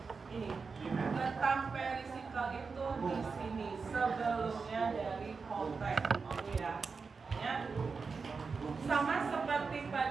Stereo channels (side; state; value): left; quieter; 4.9 dB